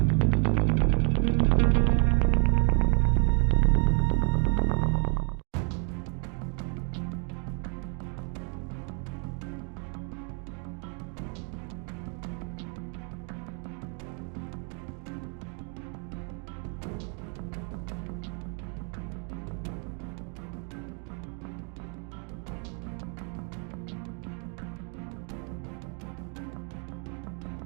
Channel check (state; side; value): quieter; left; 39.7 dB